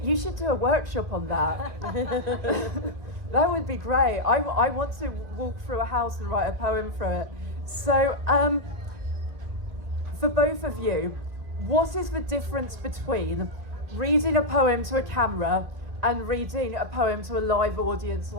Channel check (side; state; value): left; late; 1.9 ms